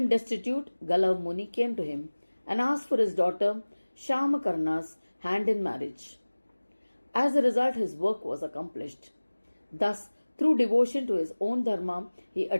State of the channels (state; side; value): inverted; both; correlation -1.00